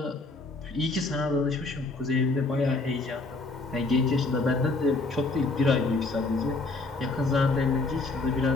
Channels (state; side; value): quieter; right; 3.4 dB